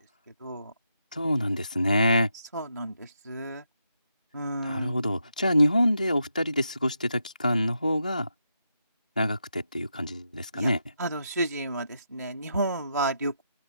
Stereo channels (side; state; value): both; inverted; correlation -0.83